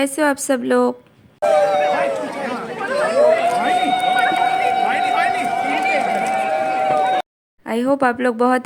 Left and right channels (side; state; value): both; identical; correlation 1.00